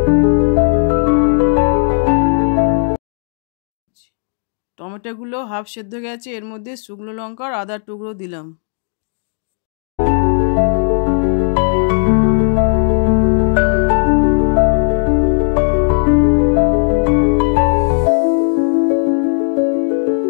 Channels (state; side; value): silent; right; 62 dB below the other